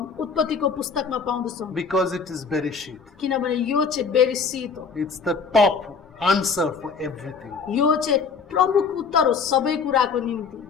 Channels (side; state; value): right; quieter; 5.4 dB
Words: उत्पत्तिको पुस्तकमा पाउँदछौँ Because it is Bereshit. किनभने यो चाहिँ बेरिसित हो It's the top answer for everything. यो चाहिँ प्रमुख उत्तर हो सबै कुराको निम्ति